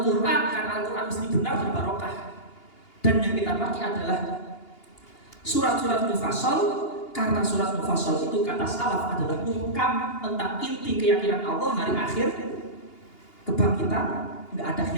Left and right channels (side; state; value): right; late; 2.8 ms